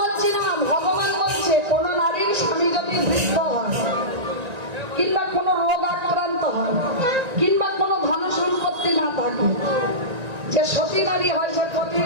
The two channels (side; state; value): left; late; 1.9 ms